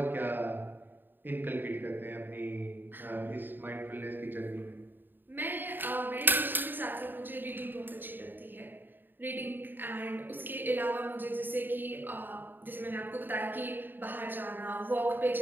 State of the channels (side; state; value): left; late; 0.093 ms